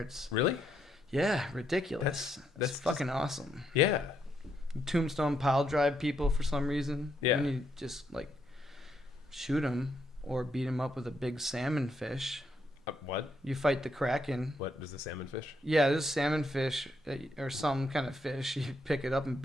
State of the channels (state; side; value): normal; both; correlation 0.77